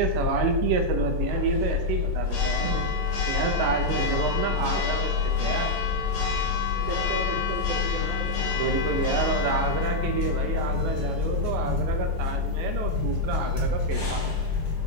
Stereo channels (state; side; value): normal; both; correlation -0.01